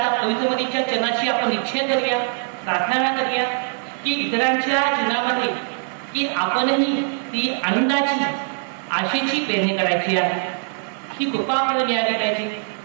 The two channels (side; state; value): left; silent; 61 dB below the other